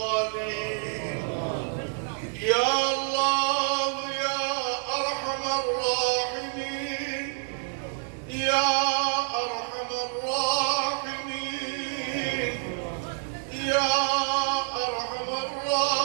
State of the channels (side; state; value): left; silent; 58 dB below the other